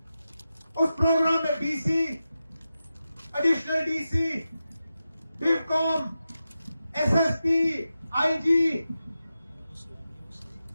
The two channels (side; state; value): both; inverted; correlation -0.91